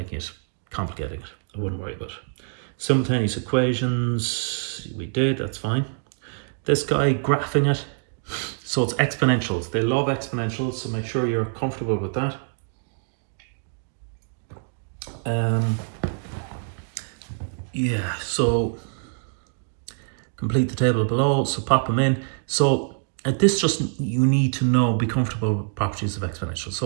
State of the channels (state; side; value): silent; left; 60 dB below the other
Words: it, complicating it. I wouldn't worry about it. Simultaneous equations, we did, that's fine. This guy, graphing it. So it's exponentials. They love exponentials, so make sure you're comfortable with that. Yeah, so complete the table below, so pop them in. So at this, just you need to be comfortable with properties of exponentials.